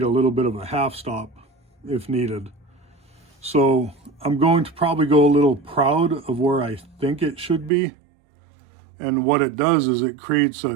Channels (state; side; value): drops out; left; at 7.7 s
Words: a little bit of a half stop if needed. So I'm going to probably go a little proud of where I think it should be. And what it does is it creates